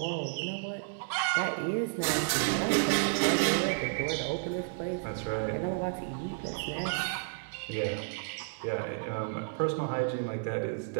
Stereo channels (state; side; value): silent; left; digital silence